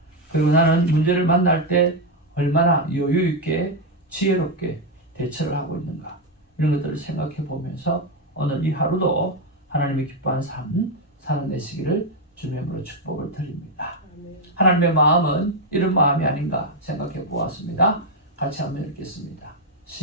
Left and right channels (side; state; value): both; normal; correlation 0.05